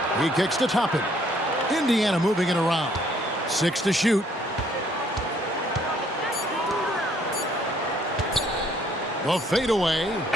He kicks to Toppin. Indiana moving it around. 6 to shoot. The fadeaway.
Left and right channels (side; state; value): both; normal; correlation 0.64